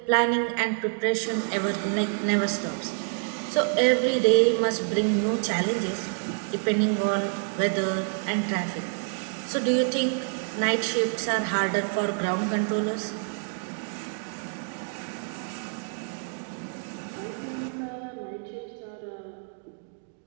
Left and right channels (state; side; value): silent; left; 56 dB below the other